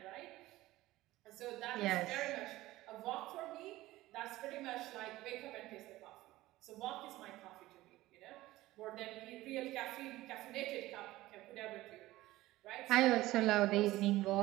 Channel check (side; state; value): left; quieter; 17.3 dB